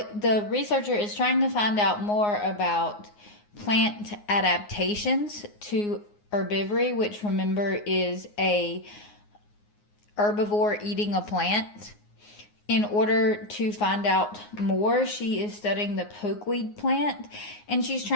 researcher is trying to find out more about plant adaptations to herbivory, which remember is a herbivore eating a plant. In order to find out more, she is studying the pokeweed plant and she's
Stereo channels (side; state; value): right; late; 9.6 ms